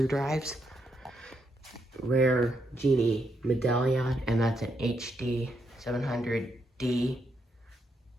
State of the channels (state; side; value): normal; both; correlation 0.79